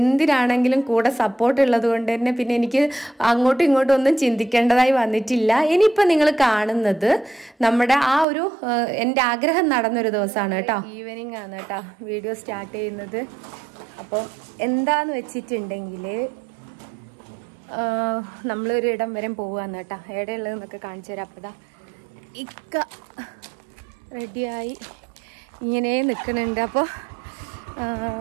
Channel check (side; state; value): left; drops out; at 8.2 s